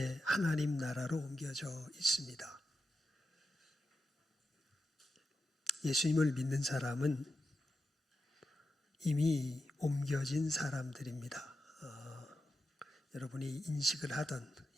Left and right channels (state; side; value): normal; both; correlation 0.88